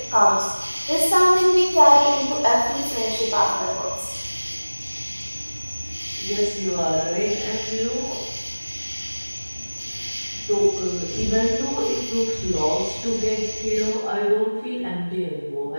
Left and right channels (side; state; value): both; inverted; correlation -1.00